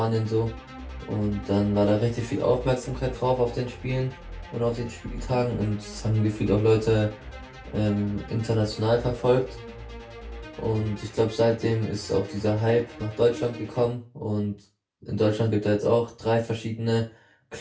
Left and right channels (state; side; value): identical; both; correlation 1.00